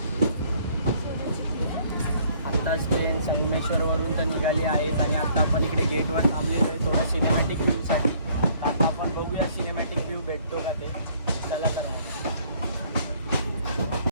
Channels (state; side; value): inverted; both; correlation -0.61